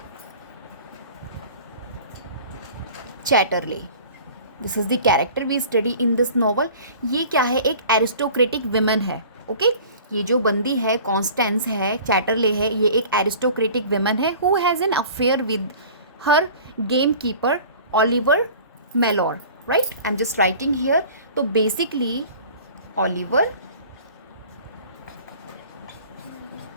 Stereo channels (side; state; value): both; inverted; correlation -0.44